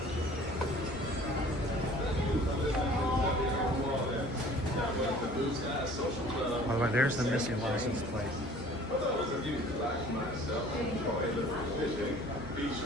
By the way, there's the missing license plate.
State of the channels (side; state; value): both; normal; correlation 0.50